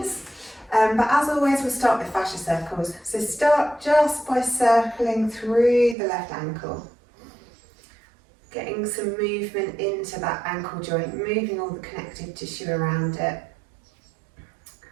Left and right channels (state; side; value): drops out; left; at 6.0 s